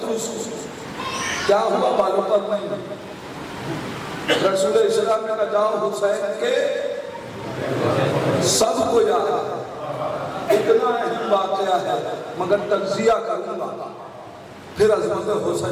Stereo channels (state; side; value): identical; both; correlation 1.00